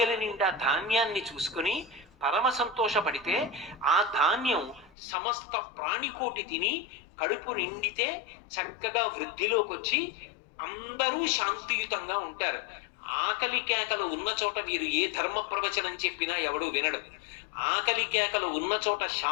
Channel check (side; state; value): right; drops out; at 4.9 s